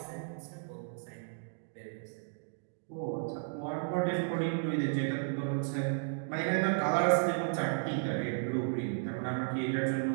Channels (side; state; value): left; silent; digital silence